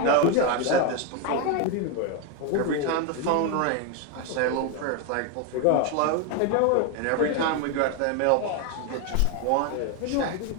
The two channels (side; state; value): both; different; correlation 0.02